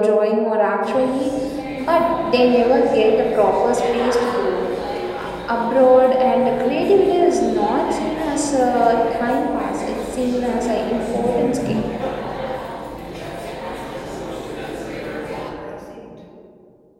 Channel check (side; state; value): both; identical; correlation 1.00